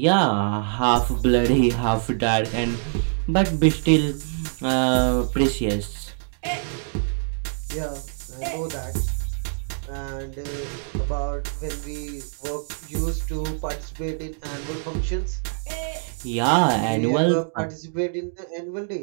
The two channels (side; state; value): left; silent; digital silence